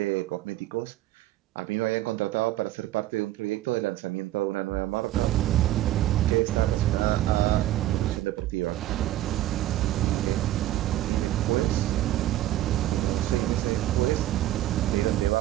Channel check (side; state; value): left; quieter; 14.4 dB